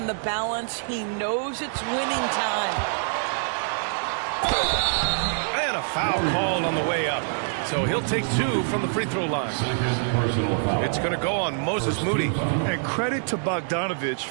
the balance. He knows it's winning time. And a foul called on the way up. So he'll take 2 from the free throw line. It's going to go on Moses Moody. And credit to Bogdanovich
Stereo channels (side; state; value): left; silent; digital silence